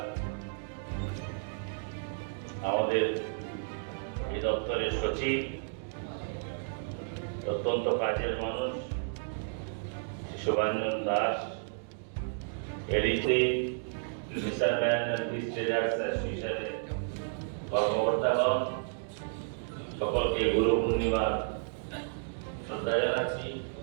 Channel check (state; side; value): silent; left; digital silence